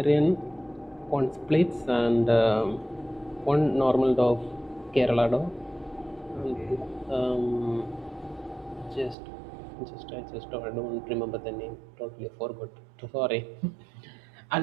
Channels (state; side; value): drops out; left; at 9.2 s